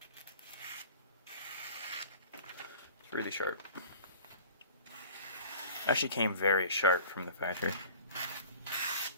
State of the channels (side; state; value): both; inverted; correlation -0.43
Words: It's really sharp. Actually came very sharp from the factory.